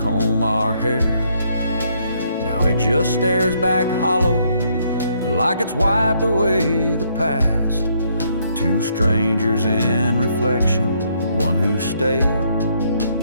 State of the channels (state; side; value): inverted; both; correlation -0.71